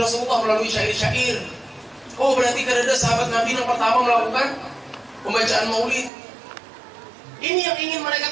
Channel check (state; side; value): drops out; left; at 6.1 s